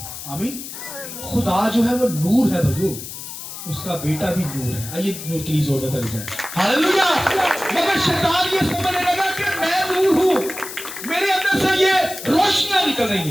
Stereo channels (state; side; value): noise; left; hiss, 10 dB below the sound